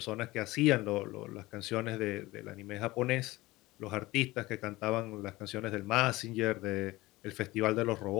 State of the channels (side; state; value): right; quieter; 19.7 dB